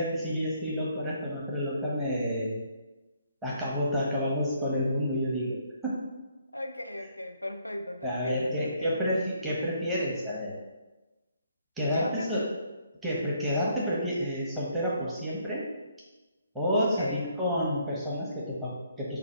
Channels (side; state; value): both; inverted; correlation -0.67